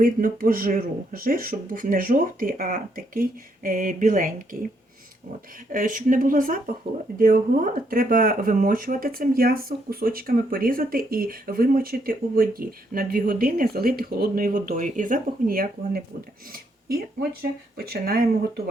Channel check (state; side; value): normal; both; correlation 0.74